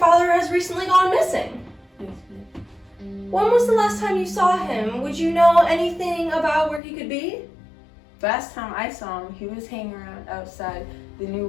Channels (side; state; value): right; drops out; at 6.8 s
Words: has recently gone missing? When was the last time you saw him? Would you know anything about where he could be? Last time I saw him, he was hanging around outside the new